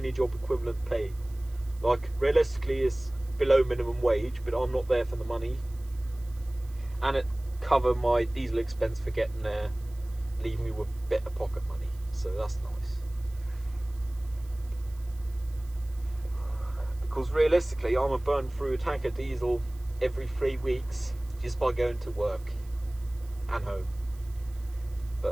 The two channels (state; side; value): noise; right; hiss, 26 dB below the sound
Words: job equivalent pay. Like, realistically it's below minimum wage, but I'm not there for the money, and it cover my diesel expense for getting there, leaving me with a bit of pocket money, so that's nice. Because realistically I'm a burn through a tank of diesel every 3 weeks just by going to work and home.